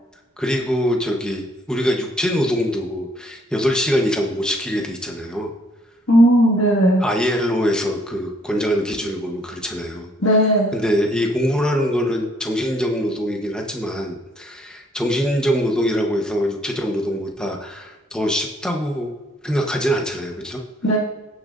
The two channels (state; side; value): normal; both; correlation 0.65